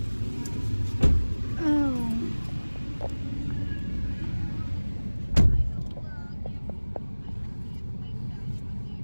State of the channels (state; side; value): inverted; both; correlation -1.00